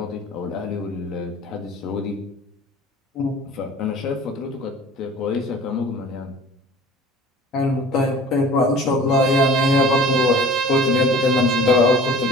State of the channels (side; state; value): both; normal; correlation 0.44